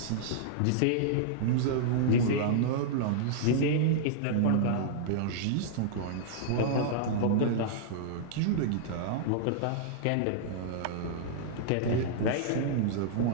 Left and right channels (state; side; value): different; both; correlation -0.02